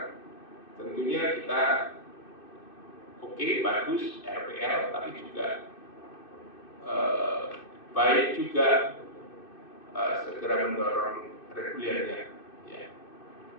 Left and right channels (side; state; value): right; late; 2.6 ms